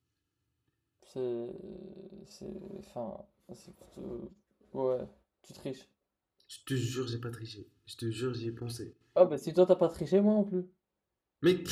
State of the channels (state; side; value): identical; both; correlation 1.00